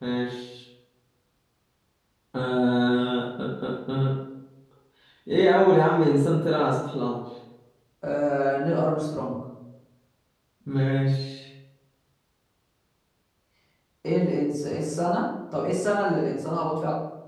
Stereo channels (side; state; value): both; identical; correlation 1.00